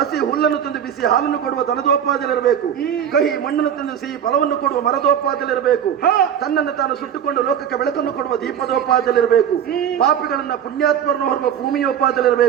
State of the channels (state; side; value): quieter; left; 9.0 dB